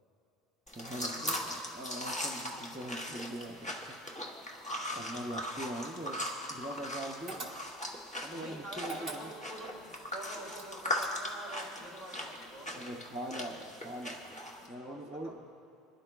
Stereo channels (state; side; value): normal; both; correlation 0.34